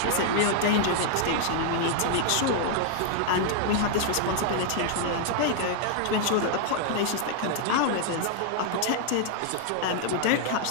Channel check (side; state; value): both; different; correlation 0.00